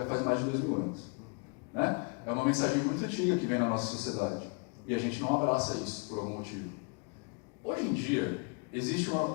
faz mais de 2000 anos. Né? É uma mensagem muito antiga que vem na nossa sociedade. E a gente não abraça isso por algum motivo. Hoje em dia, existe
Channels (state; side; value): quieter; right; 35.4 dB